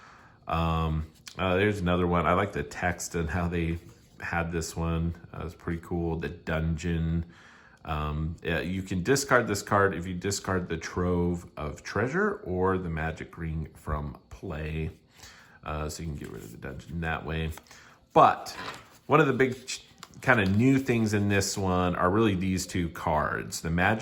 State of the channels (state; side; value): identical; both; correlation 1.00